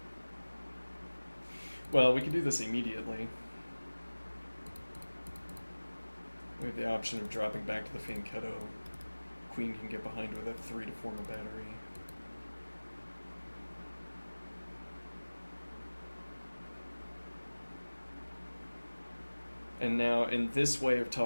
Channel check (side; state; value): both; inverted; correlation -1.00